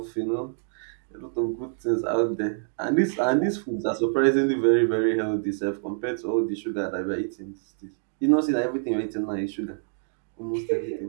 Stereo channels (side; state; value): left; silent; 61 dB below the other